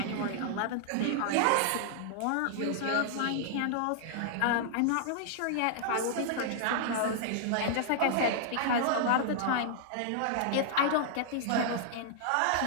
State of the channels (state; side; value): different; both; correlation -0.01